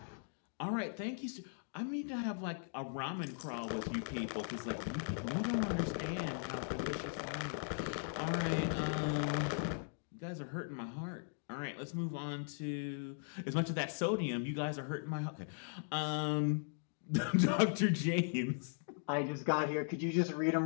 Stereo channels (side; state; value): right; silent; digital silence